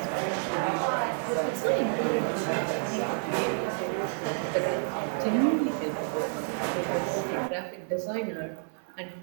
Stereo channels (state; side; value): silent; left; 57 dB below the other